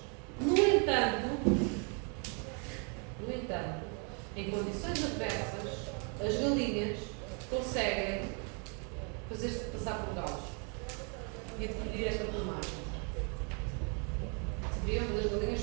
No entanto, em condições adversas, as galinhas conseguem fazer-se passar por galos e adquirir esta plumagem. Sabiam que as galinhas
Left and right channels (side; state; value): left; quieter; 37.4 dB